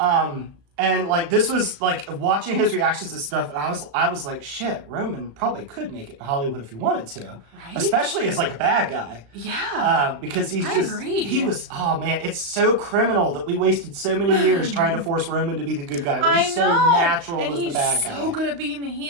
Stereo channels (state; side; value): late; left; 35 ms